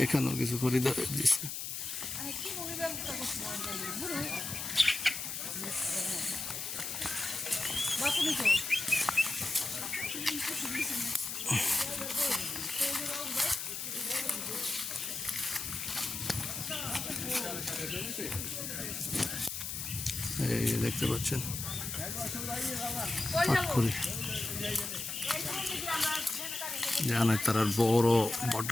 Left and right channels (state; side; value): noise; left; hiss, 5 dB below the sound